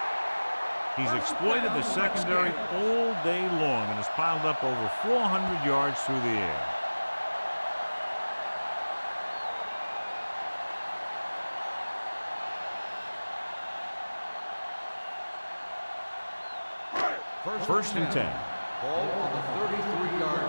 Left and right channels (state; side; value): inverted; both; correlation -1.00